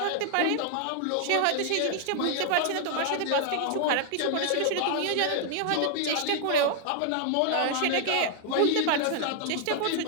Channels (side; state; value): both; different; correlation 0.00